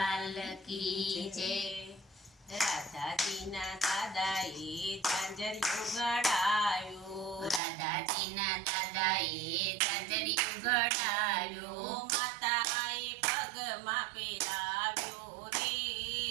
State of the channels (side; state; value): left; drops out; at 7.6 s